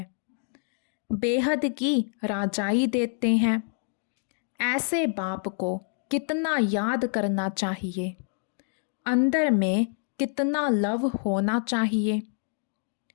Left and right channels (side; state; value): right; silent; 60 dB below the other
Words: बेहद की राजाई देते हैं। ऐसे बाप को कितना याद करना चाहिए, अंदर में कितना लव होना चाहिए।